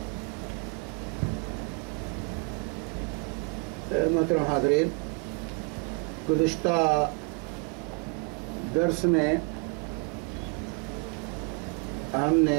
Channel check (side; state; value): left; quieter; 31.0 dB